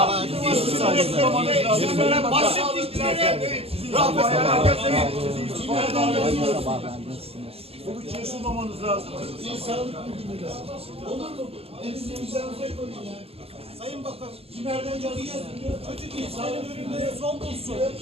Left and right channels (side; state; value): left; late; 0.29 ms